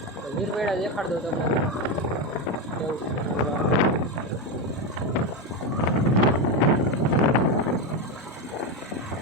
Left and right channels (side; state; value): both; normal; correlation 0.12